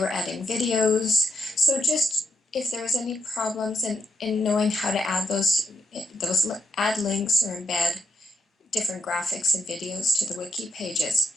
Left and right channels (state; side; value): normal; both; correlation 0.81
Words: adding videos. So just if there was any problems in knowing how to add those add links or embed different graphics and videos to the wiki pages.